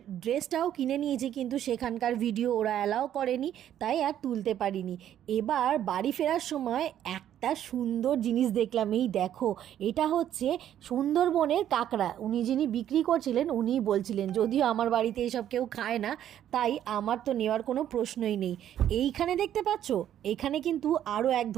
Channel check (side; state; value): left; quieter; 10.9 dB